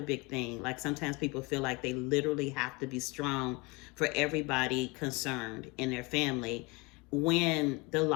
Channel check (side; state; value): right; quieter; 26.8 dB